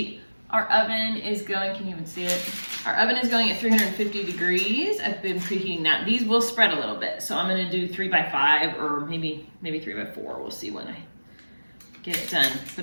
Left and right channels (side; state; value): both; inverted; correlation -1.00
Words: Our oven is going, can you even see it? Our oven is going at 350 degrees. I've been preheating that. These will spread a little bit. So I'm gonna do 3 by 5 or maybe 3 by 4. We'll see when I get it done.